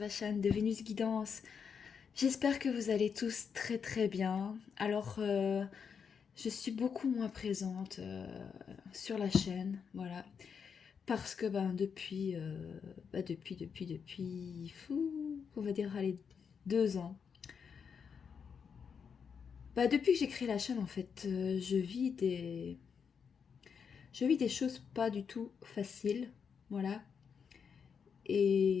chaîne de Vénus Guidance. J'espère que vous allez tous très très bien. Je suis beaucoup moins présente sur la chaîne, voilà, parce que depuis, on va dire, allez, 2 ans. Depuis que j'ai créé la chaîne, en fait, je vis des choses pas du tout faciles, voilà.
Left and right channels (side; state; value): right; quieter; 6.5 dB